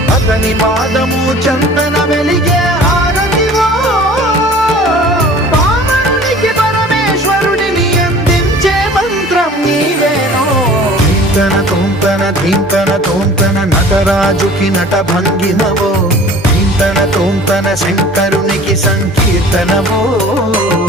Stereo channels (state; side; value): normal; both; correlation 0.46